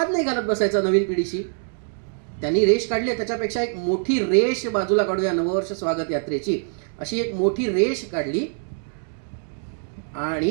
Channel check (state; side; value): silent; left; 63 dB below the other